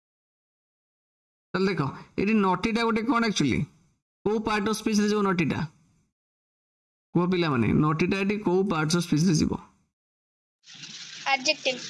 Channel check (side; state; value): both; identical; correlation 1.00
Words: चल देखो एटी नॉटी टा गोटे कोन एक्चुअली को पार्ट ऑफ स्पीच रे जो नॉटी टा को पिला माने नॉटी टा एटी को पार्ट ऑफ स्पीच रे जीवो एडजेक्टिव